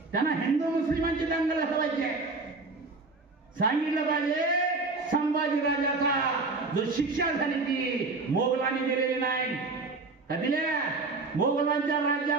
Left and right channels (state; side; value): quieter; left; 3.7 dB